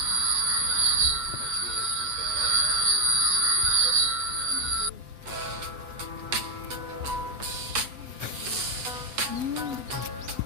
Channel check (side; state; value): left; late; 8.2 ms